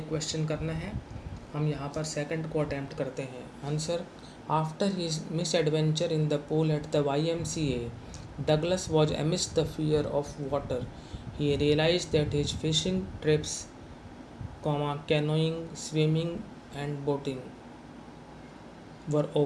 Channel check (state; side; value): identical; both; correlation 1.00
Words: क्वेश्चन करना है. हम यहाँ पर सेकंड को अटैम्प्ट करते हैं. Answer. After his miss adventure in the pool at the YMCA, Douglas was amidst the fear of water. He realized that his fishing trips, canoeing, swimming and boating were